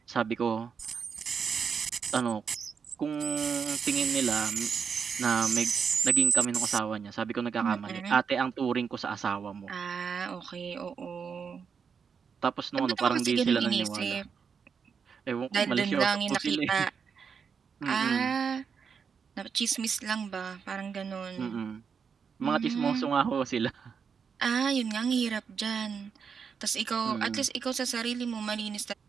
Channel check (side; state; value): left; quieter; 6.3 dB